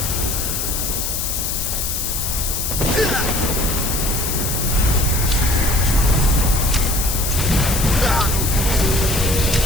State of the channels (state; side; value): noise; left; hiss, 2 dB below the sound